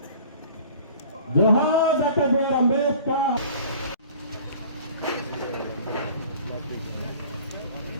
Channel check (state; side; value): inverted; both; correlation -0.47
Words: జోహార్ డాక్టర్ బి.ఆర్. అంబేద్కర్.